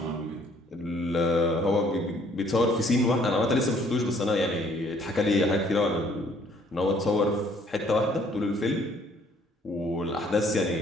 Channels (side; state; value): both; normal; correlation 0.61